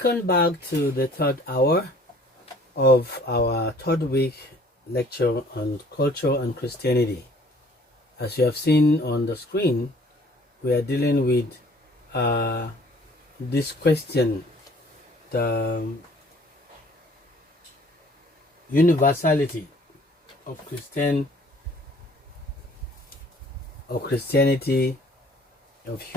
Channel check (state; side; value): normal; both; correlation 0.54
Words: back to the third hour of our third week lecture on culture and Christianity. As you have seen on the screen, we are dealing with this question, the universality of Christianity, of